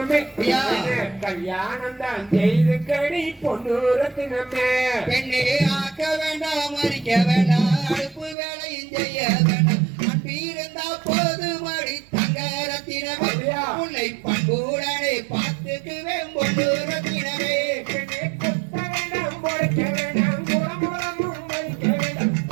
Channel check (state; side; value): drops out; left; at 8.3 s